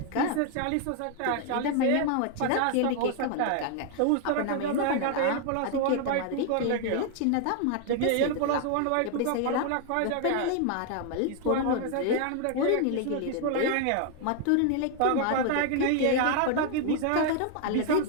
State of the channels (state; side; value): different; both; correlation 0.00